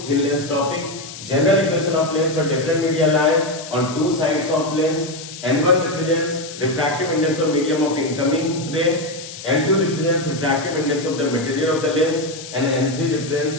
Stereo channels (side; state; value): left; noise; hiss, 13 dB below the sound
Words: thin lens topic. General equation of lens for different media lie on two sides of lens. N1 represents refractive index of medium of incoming ray, N2 represents refractive index of the material of the lens, and N3 represents